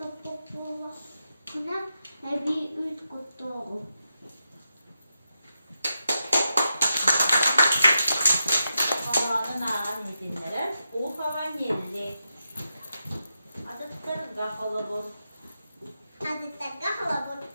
bulduğuna, bir üç kutlu. havan geldi. Adıttır kafalı bu. Hazırda halabur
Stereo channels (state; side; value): inverted; both; correlation -0.87